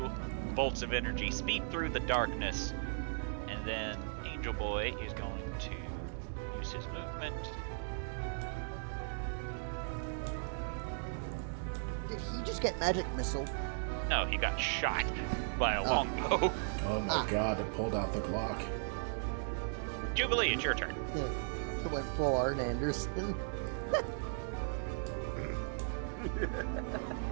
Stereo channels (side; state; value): left; silent; digital silence